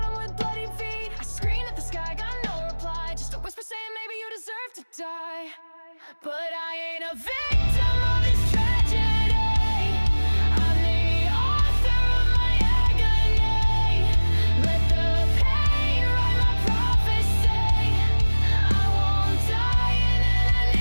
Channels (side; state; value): both; inverted; correlation -1.00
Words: with bloody feet. I screamed at the sky, got no reply, just a whisper saying maybe you deserve to die. But I ain't a victim of this tragedy. I'm the author of my agony. Let the pain write my prophecy. I won't die in